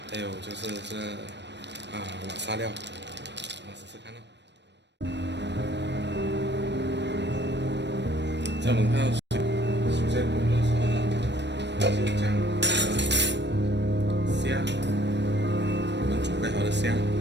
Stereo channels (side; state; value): left; late; 0.51 ms